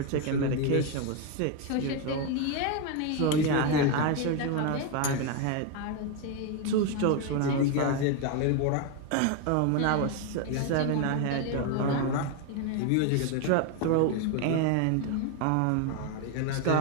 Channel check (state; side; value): different; both; correlation 0.02